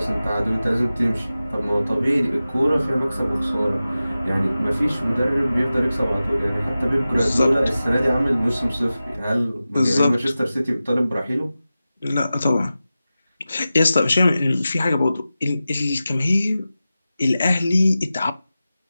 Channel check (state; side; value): inverted; both; correlation -0.94